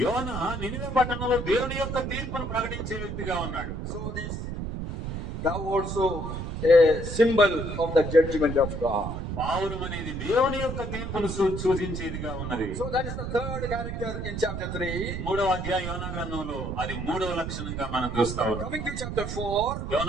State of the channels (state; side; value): noise; right; rumble, 5 dB below the sound